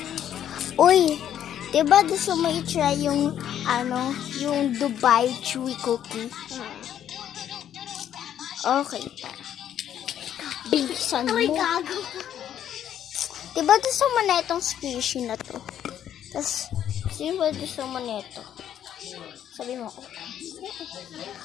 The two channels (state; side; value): quieter; right; 10.3 dB